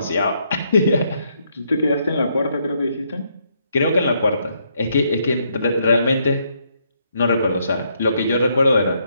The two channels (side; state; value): both; inverted; correlation -0.74